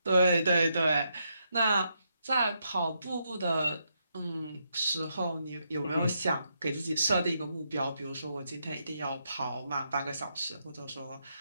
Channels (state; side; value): inverted; both; correlation -0.80